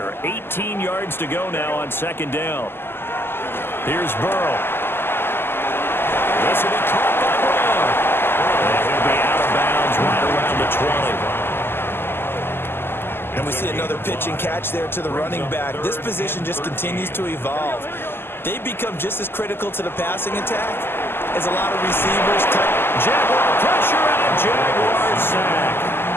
18 yards to go now on second down. Here's Burrow. This will be caught by Brown. And he'll be out of bounds right around the 20. And we see another pitch and catch there to the running back. This position just continues to evolve. They become just as critical to the passing attack as a lot of receivers. Jaguar pressure and a Jaguar sack.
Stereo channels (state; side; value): late; right; 0.11 ms